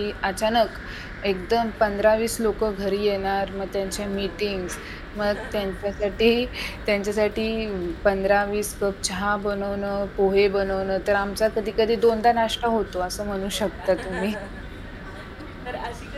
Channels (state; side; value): identical; both; correlation 1.00